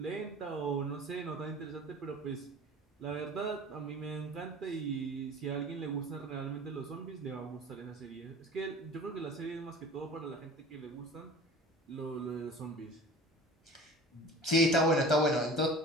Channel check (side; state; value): both; normal; correlation 0.40